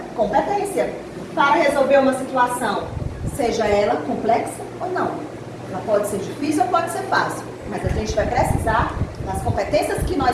competência para resolver uma situação, seja ela complexa ou não. Ela pode ser difícil ou pode ser fácil, mas a gente vai precisar das competências que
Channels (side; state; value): both; identical; correlation 1.00